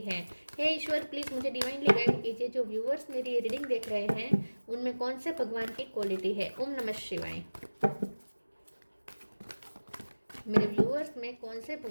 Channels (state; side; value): inverted; both; correlation -1.00